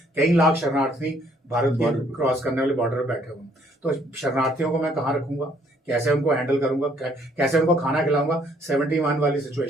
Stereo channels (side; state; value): both; normal; correlation 0.65